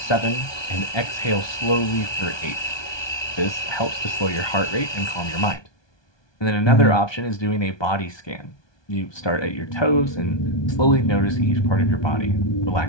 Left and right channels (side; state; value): right; late; 1.2 ms